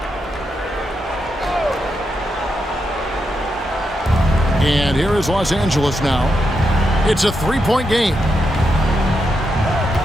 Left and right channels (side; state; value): both; normal; correlation 0.84